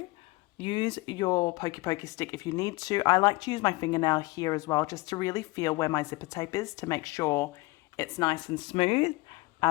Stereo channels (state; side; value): quieter; right; 22.3 dB